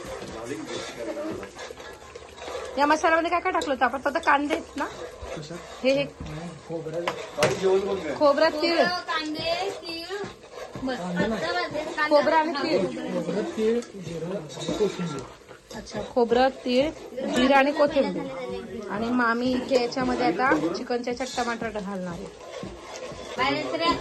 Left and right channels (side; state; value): both; identical; correlation 1.00